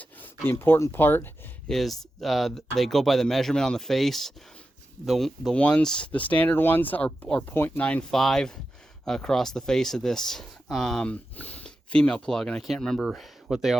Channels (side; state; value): both; normal; correlation 0.91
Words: The important part is they go by the measurement on the face. The standard ones are 0.95 across the face of this female plug, and I can't remember what they